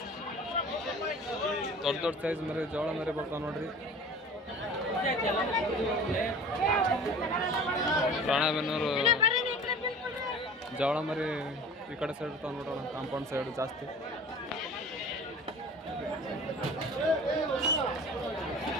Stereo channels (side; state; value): both; normal; correlation 0.41